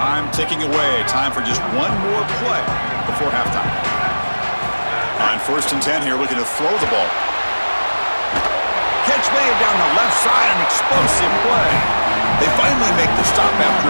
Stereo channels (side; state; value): both; inverted; correlation -1.00